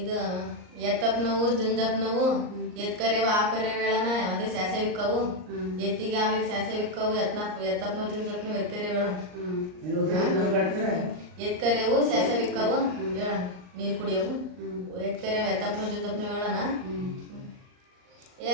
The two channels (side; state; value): left; late; 38 ms